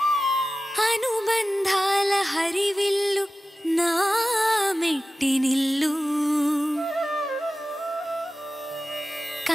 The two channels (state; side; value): normal; both; correlation 0.95